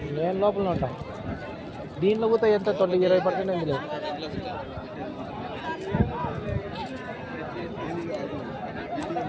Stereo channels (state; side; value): identical; both; correlation 1.00